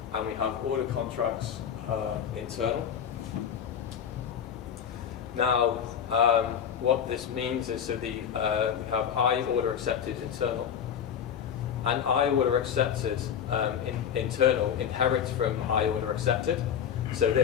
and we have order contracts internal. Now, what this means is, so we have I order accepted internal, and I order accepted internal inherits from I order accepted. So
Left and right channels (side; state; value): right; quieter; 8.4 dB